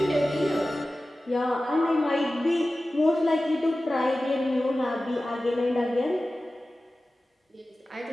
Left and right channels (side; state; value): both; normal; correlation 0.95